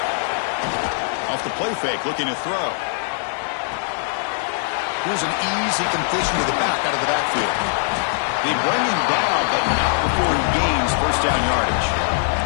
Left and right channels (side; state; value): right; silent; digital silence